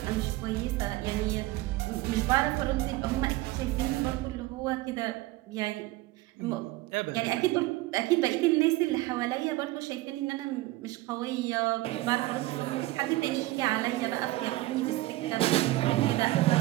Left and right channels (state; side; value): quieter; left; 18.6 dB